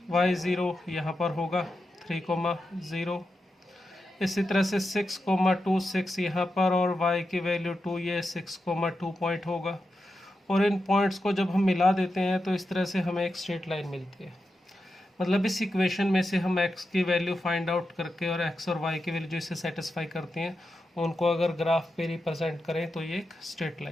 y 0 यहाँ पर होगा 3, 0। इसी तरह से 6, 6 यहाँ पर, और y की वैल्यू 2, ये 6, 2 पॉइंट होगा। और इन पॉइंट्स को जब हम मिला देते हैं तो इस तरह से हमें एक स्ट्रेट लाइन मिलती है। मतलब इस इक्वेशन में से हम x की वैल्यू फाइंड आउट करके और x और y की वैल्यू जो इसे सेटिस्फाई करती हैं, उनको अगर ग्राफ पे रिप्रेजेंट करें तो ये एक स्ट्रेट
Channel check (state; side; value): normal; both; correlation 0.88